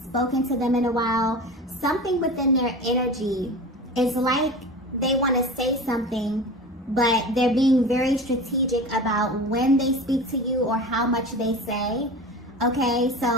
spoken to them in a while. Something within their energy is like they want to say something, but they're being very strategic about when they speak to you or how much they say. Okay,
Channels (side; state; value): both; normal; correlation 0.32